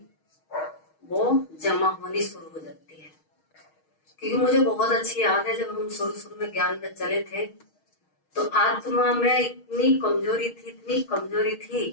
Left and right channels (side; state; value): right; late; 6.4 ms